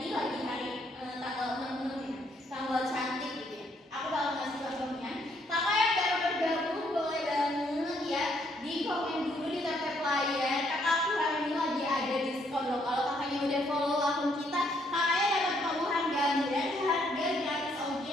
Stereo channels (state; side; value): normal; both; correlation 0.70